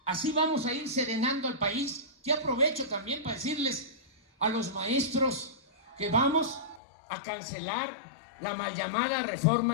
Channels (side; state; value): right; drops out; at 6.8 s